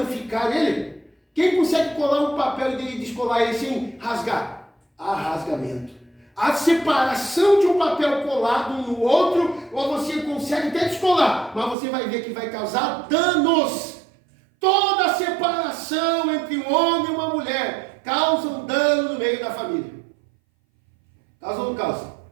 ele? Quem consegue colar um papel e descolar ele sem rasgar? Há rasgamento. A separação de um papel colado um no outro, ou você consegue até descolar, mas você vai ver que vai causar danos. Toda separação entre um homem e uma mulher causa um dano no meio da família. Causa ou não causa?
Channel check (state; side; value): drops out; left; at 11.8 s